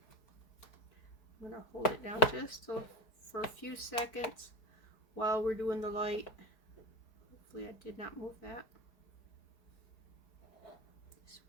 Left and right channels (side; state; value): right; late; 4.7 ms